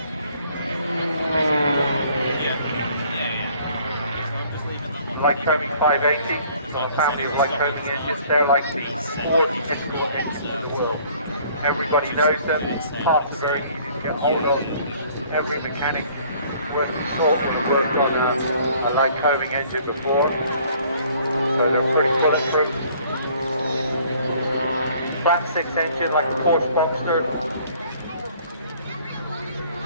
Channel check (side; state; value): both; inverted; correlation -0.57